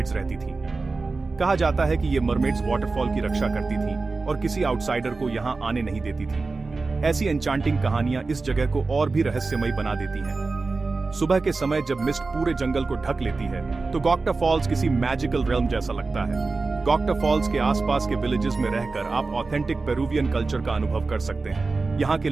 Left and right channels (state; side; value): quieter; left; 3.9 dB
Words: रहती थीं। कहा जाता है कि ये मरमेड्स वाटरफॉल की रक्षा करती थीं और किसी आउटसाइडर को यहां आने नहीं देती थीं। ऐसी एन्चांटिंग कहानियां इस जगह को और भी रहस्यमयी बना देती हैं। सुबह के समय जब मिस्ट पूरे जंगल को ढक लेती है, तो गॉक्टा फॉल्स किसी मैजिकल रेल्म जैसा लगता है। गॉक्टा फॉल्स के आसपास के विलेजेस में रहकर आप ऑथेंटिक पेरुवियन कल्चर का अनुभव कर सकते हैं। यहाँ के